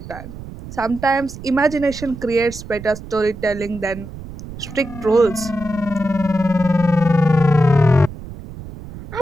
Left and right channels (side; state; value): right; noise; rumble, 13 dB below the sound